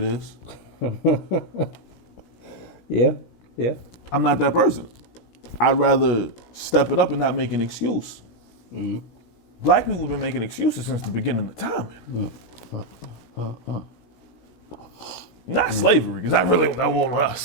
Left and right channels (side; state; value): right; late; 17 ms